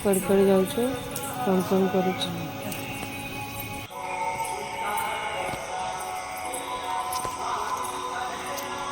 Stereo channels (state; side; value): identical; both; correlation 1.00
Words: कड़े जाऊँ कौन कौन करुँ।